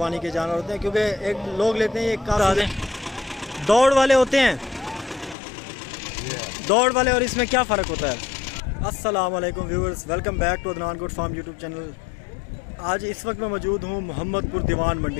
के जानवर होते हैं, क्योंकि एक लोग लेते हैं, ये काफ़ी दौड़ वाले होते हैं। दौड़ वाले और इसमें क्या फ़र्क होता है? अस्सलाम वालेकुम viewers, welcome back to Adnan good Farm YouTube channel. आज इस वक्त मैं मौजूद हूँ मोहम्मदपुर दीवान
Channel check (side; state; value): right; drops out; at 5.4 s